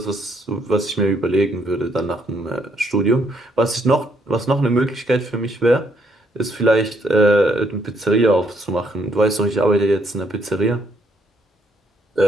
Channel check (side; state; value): both; normal; correlation 0.71